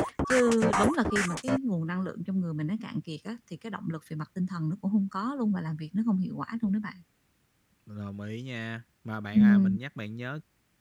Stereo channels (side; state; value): both; identical; correlation 1.00